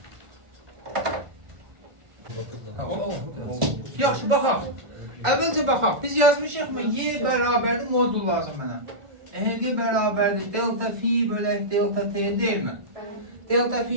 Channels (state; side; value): late; left; 1.4 ms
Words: Yaxşı, baxaq. Əvvəlcə baxaq. Biz yazmışıq mı? Y bərabərdir, modul lazım mənə. EHG bərabərdir, delta fi bölək delta t deyilmi? Delta